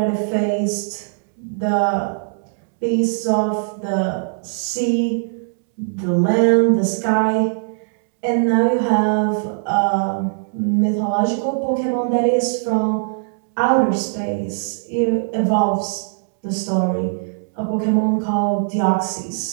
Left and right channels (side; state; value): left; silent; 66 dB below the other